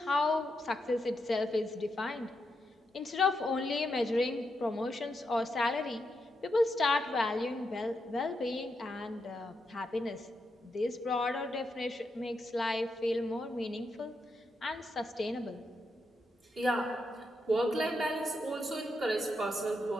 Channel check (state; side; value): normal; both; correlation 0.83